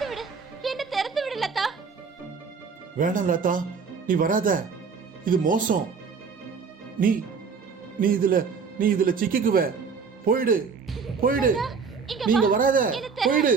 விடு, என்ன திறந்து விடு லதா. வேணாம் லதா, நீ வராத, இது மோசம். நீ நீ இதுல சிக்கிக்குவ. போயிடு போயிடு, நீங்க வராத, போயிடு.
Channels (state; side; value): quieter; left; 5.5 dB